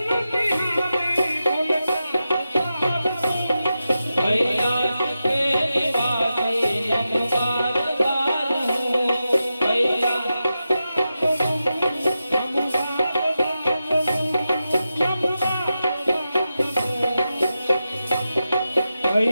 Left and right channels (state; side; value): inverted; both; correlation -0.90